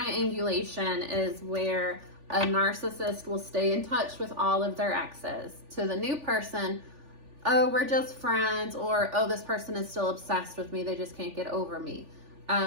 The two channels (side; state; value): left; late; 3.4 ms